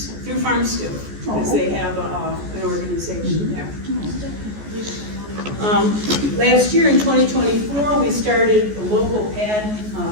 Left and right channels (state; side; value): late; left; 14 ms